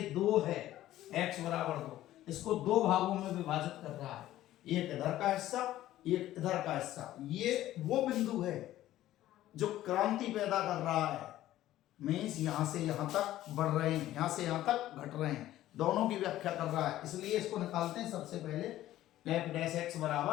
2 है, x बराबर 2, इसको 2 भागों में विभाजित कर रहा है, एक इधर का हिस्सा एक इधर का हिस्सा। ये वो बिंदु है जो क्रांति पैदा कर रहा है, मीन्स यहां से यहां तक बढ़ रहे हैं, यहां से यहां तक घट रहे हैं, दोनों की व्याख्या कर रहा है। इसलिए इसको निकालते हैं सबसे पहले f डैश x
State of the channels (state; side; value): quieter; right; 14.1 dB